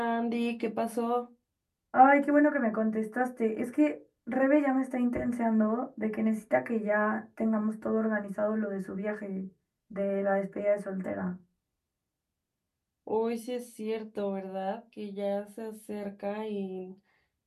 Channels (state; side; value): identical; both; correlation 1.00